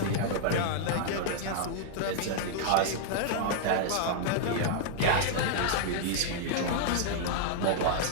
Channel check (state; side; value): different; both; correlation -0.01